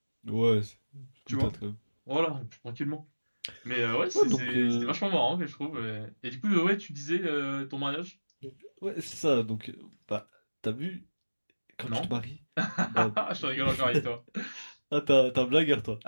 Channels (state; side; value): inverted; both; correlation -1.00